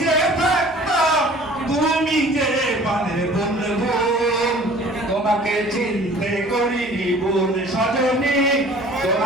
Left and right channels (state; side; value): normal; both; correlation 0.49